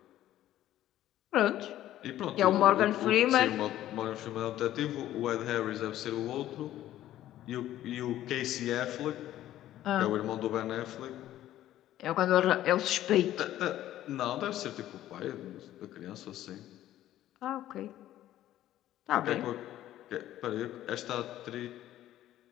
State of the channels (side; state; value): right; quieter; 13.3 dB